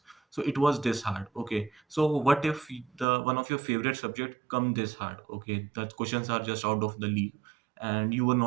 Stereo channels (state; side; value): drops out; left; at 3.1 s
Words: So it was this hard. Okay, so what if the one of your favorite subject come this hard? Okay, the questions are just out of the league, and you were